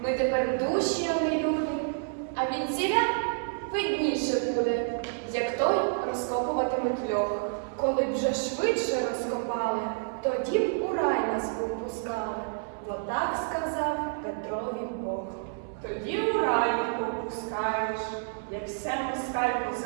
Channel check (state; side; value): silent; left; 57 dB below the other